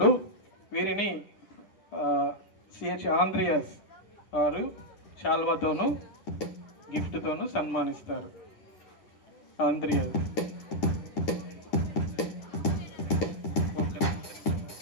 వీరిని సిహెచ్ ఆంద్రియాస్ వారు శాల్వాతోనూ గిఫ్ట్తోనూ సన్మానిస్తారు. ఆంద్రియాస్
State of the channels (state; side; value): late; right; 9.9 ms